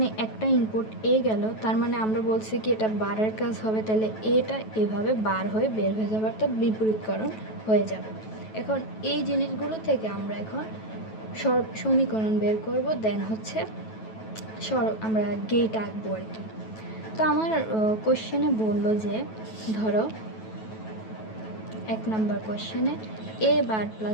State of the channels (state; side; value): late; right; 9.2 ms